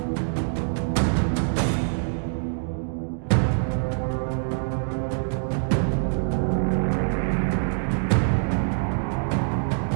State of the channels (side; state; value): left; silent; digital silence